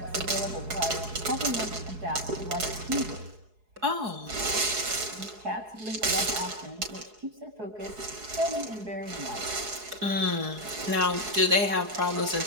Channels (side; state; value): left; late; 4.7 ms